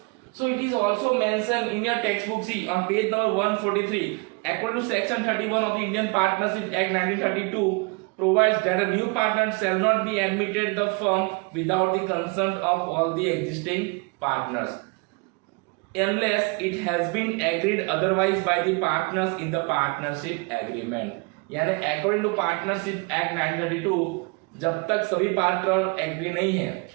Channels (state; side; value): quieter; left; 30.7 dB